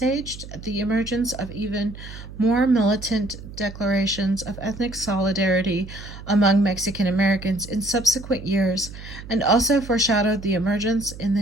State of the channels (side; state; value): right; noise; hum, 14 dB below the sound